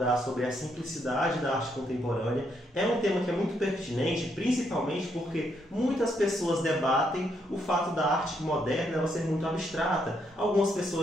sobre a simplicidade da arte contemporânea. É um tema que é muito pertinente, principalmente porque muitas pessoas debatem o fato da arte moderna ela ser muito abstrata. Algumas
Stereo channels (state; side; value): normal; both; correlation 0.76